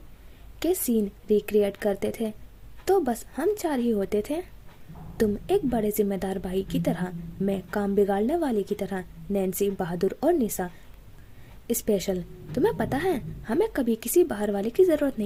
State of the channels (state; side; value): identical; both; correlation 1.00